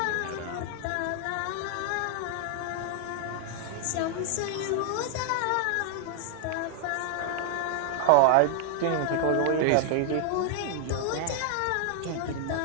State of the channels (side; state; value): both; different; correlation 0.00